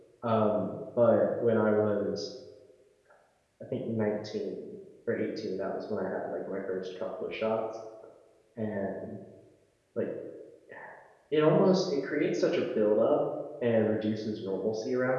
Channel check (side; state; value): both; identical; correlation 1.00